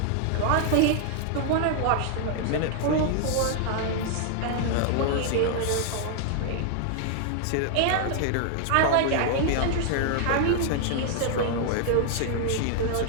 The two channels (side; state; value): both; different; correlation 0.00